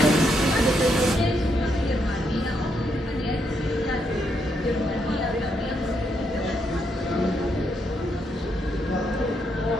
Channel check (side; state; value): both; normal; correlation 0.78